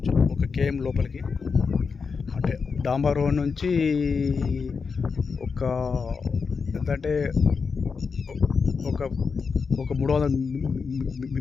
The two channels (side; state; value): right; quieter; 5.3 dB